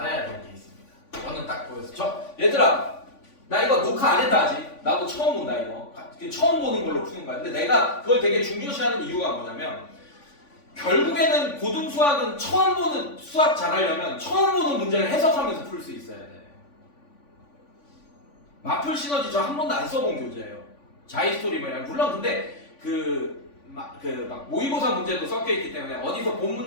될 게 있습니다. 저는 딱 보였어. 얘들아, 나 이거 녹화 안 했다 아직. 나도 처음 본다 이거. 처음 보는 걸로 푸는 거야. 근데 내가 그걸 되게 중요시하는 이유가 뭐냐면 결국에는 고등수학은 처음 보는 수학 잘하려면 처음 보는 문제를 해석하면서 풀 수 있어야 돼. 마플 시너지 저 한 번도 안 써본 교재예요. 자이스토리 뭐냐. 물론 근데 막 모의고사 문제도 섞여 있기 때문에 어디서 본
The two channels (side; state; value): right; late; 3.5 ms